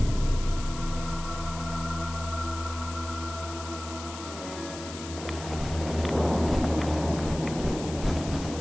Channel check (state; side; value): noise; left; hiss, 12 dB below the sound